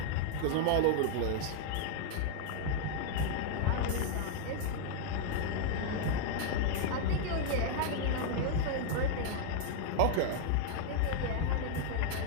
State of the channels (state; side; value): different; both; correlation 0.00